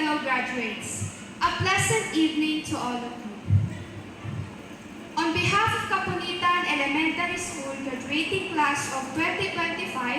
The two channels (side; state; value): both; identical; correlation 1.00